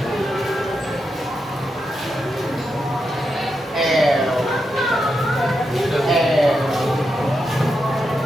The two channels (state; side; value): normal; both; correlation 0.86